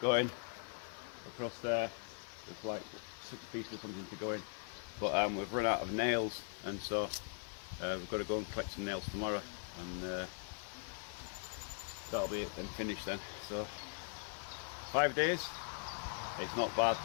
going across there. There's like 6 pieces or something to go in, but we've run out of nails, and so we've got to go and collect some nails tomorrow, and that'll be it then, finished then. So 5 days, it's not bad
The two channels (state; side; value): silent; right; 51 dB below the other